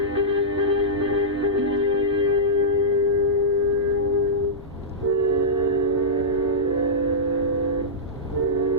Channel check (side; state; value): both; normal; correlation -0.13